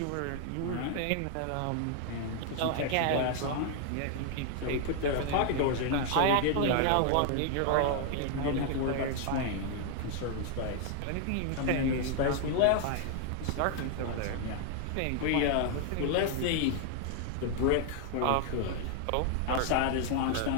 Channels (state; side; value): different; both; correlation 0.00